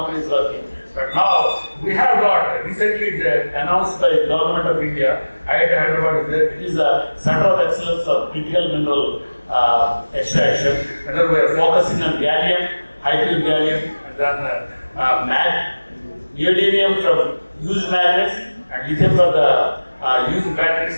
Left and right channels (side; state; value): both; inverted; correlation -1.00